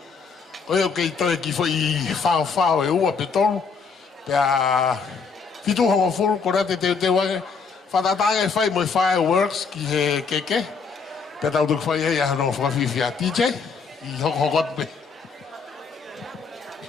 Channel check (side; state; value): right; quieter; 5.2 dB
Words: Koe o kei toi ki whai whao e ua pe tolu. Pea fitu hongo fulu kore te wange. Whatatanga e whai moi fireworks ki he keke. Pea tautoki whai hei ahano whawhiwhia DJ. I hoko pe.